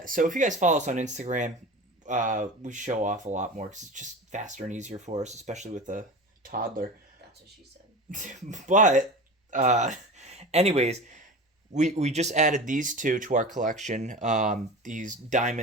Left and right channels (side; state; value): both; normal; correlation 0.31